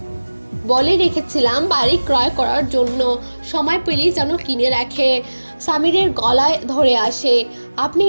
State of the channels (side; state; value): both; inverted; correlation -1.00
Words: বলে রেখেছিলাম বাড়ি ক্রয় করার জন্য, সময় পেলেই যেন কিনে রাখে। সামিরের গলায় ধরে আসে, আপনি